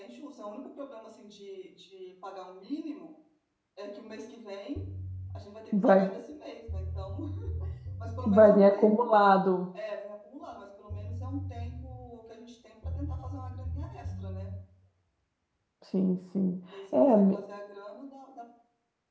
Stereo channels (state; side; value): identical; both; correlation 1.00